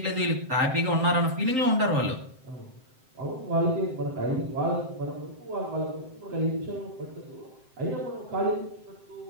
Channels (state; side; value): late; left; 7.7 ms